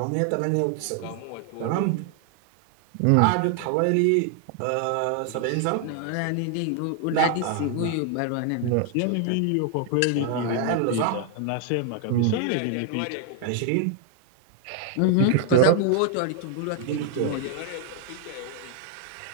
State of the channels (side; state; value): both; different; correlation 0.00